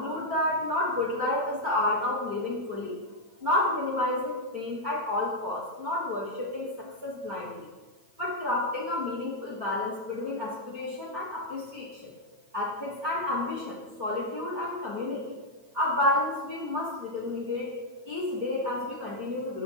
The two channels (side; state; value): left; late; 9.0 ms